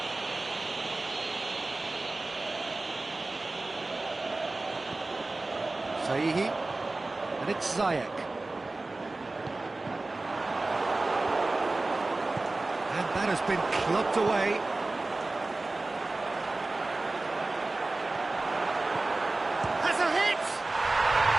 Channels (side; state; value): left; quieter; 3.2 dB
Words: Sahihi, and it's Ziyech. And that has been clubbed away. Has a hit!